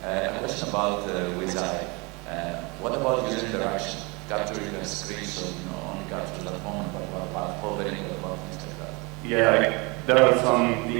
a question about WizEye. What about user interaction? Capturing a screenshot, only capture the phone, but about hovering, about things like that? Yeah, there are some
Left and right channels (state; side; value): quieter; left; 28.0 dB